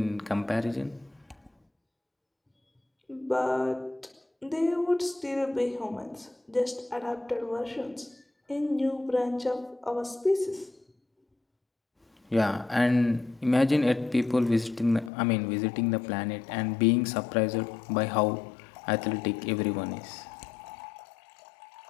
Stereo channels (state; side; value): drops out; right; at 15.1 s